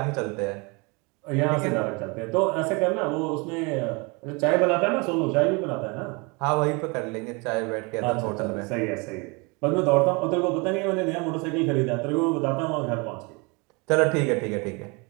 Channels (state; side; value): quieter; left; 29.3 dB